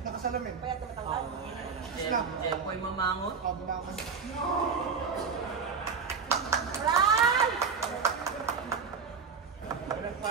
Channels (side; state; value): left; quieter; 5.8 dB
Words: Nakasalamin. Kaya tumatanggal. Jepoy mamangot. Bumakas. Run! Walang